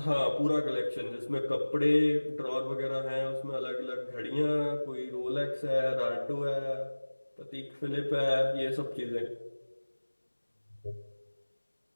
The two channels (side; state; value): both; inverted; correlation -1.00